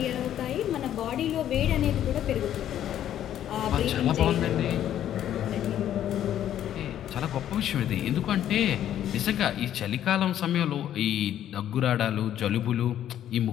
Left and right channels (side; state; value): right; quieter; 11.1 dB